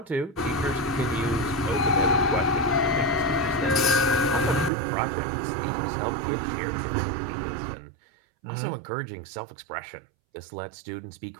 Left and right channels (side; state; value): left; drops out; at 4.7 s